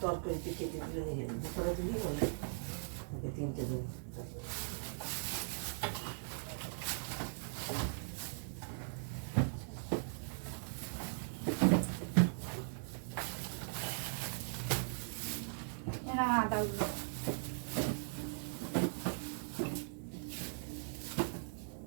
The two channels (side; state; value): left; silent; digital silence